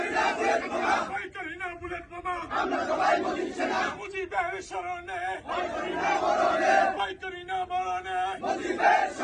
করি না বুলেট বোমা। মুজিবের শরণে ভয় করি না মরণে।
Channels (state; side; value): identical; both; correlation 1.00